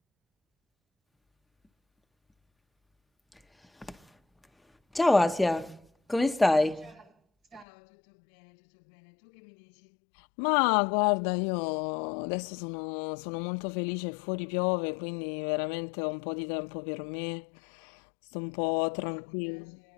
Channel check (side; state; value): right; drops out; at 7.7 s